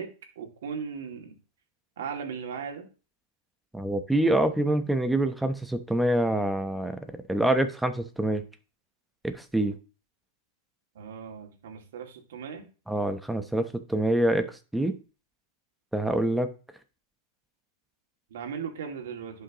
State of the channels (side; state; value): both; normal; correlation 0.75